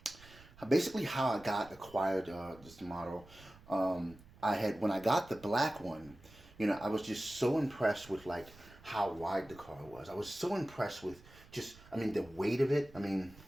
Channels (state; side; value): noise; right; rumble, 22 dB below the sound